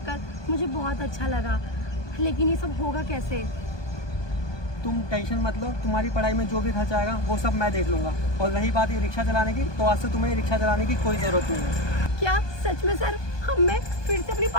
मुझे बहुत अच्छा लगा, लेकिन ये सब होगा कैसे? तुम टेंशन मत लो, तुम्हारी पढ़ाई में जो भी खर्चा आएगा वो सब मैं देख लूँगा। और रही बात ये रिक्शा चलाने की, तो आज से तुम्हें रिक्शा चलाने की कोई ज़रूरत नहीं है। क्या सच में सर? हम मैं फिर से अपनी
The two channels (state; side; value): late; right; 1.2 ms